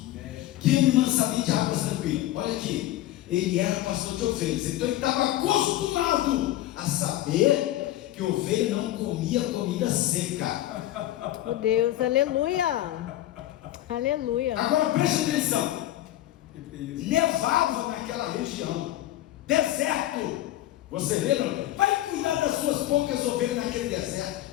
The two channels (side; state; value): right; quieter; 14.4 dB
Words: Teme mansamente águas tranquilas. Olha aqui, ele era pastor de ovelhas, então ele estava acostumado a saber que ovelha não comia comida seca. Oh Deus, aleluia. Aleluia. Agora preste atenção, nevava naquela região, deserto. Você vê, não? Vai cuidar das suas poucas ovelhas naquele deserto.